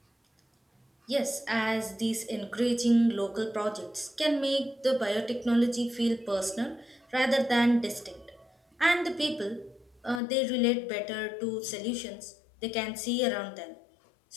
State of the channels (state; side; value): drops out; right; at 10.2 s